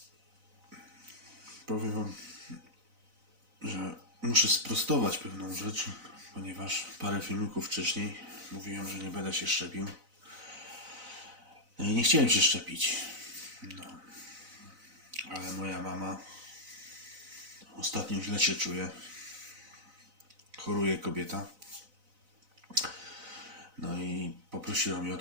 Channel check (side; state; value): left; late; 4.0 ms